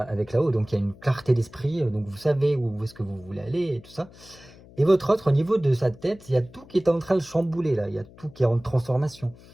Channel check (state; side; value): noise; left; hum, 22 dB below the sound